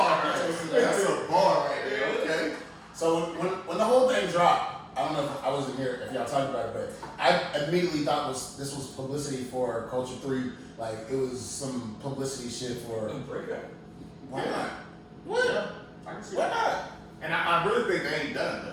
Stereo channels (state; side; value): identical; both; correlation 1.00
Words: That's a bar right there. Okay. So when the whole thing dropped, I don't know if I wasn't here if y'all talked about it, but I immediately thought this was publicity for Culture 3. Like it was some publicity shit for. Why not? What? Yeah, I can see Why that. not? And I really think they ain't done